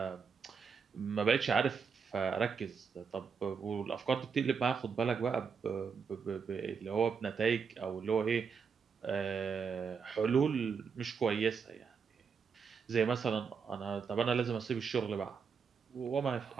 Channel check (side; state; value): left; quieter; 6.0 dB